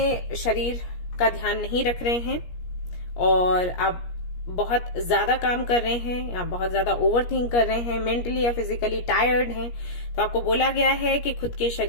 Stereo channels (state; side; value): late; right; 17 ms